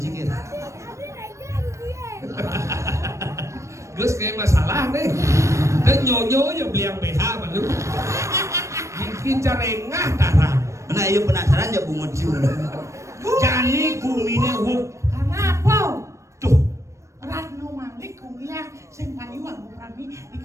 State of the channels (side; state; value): left; late; 0.15 ms